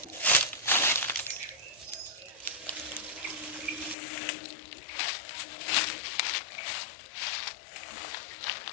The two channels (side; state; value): right; drops out; at 4.0 s